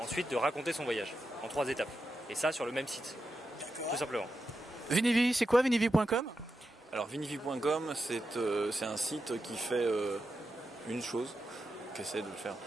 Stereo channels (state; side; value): normal; both; correlation 0.88